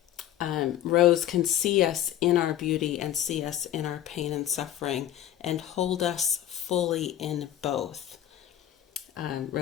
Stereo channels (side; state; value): right; quieter; 11.9 dB